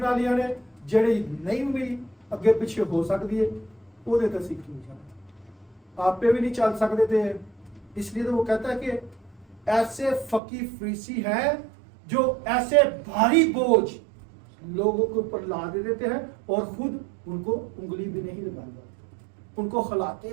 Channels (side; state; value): left; drops out; at 10.4 s